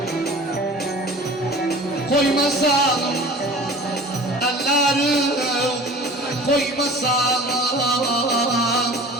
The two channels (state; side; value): normal; both; correlation 0.42